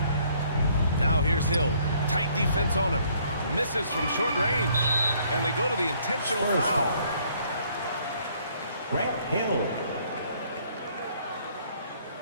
Now here's Hill. Tight defense on him. Misses from short range. And they go to the intentional Spurs foul. foul. Grant Hill.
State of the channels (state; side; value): inverted; both; correlation -0.64